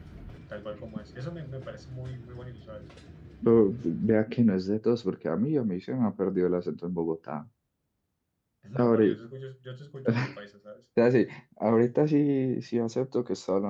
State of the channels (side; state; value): both; identical; correlation 1.00